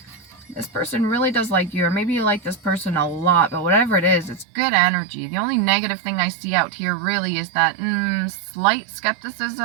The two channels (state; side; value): drops out; left; at 4.5 s